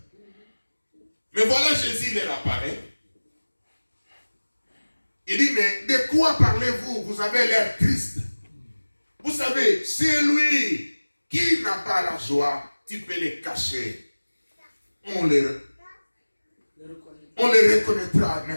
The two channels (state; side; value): inverted; both; correlation -1.00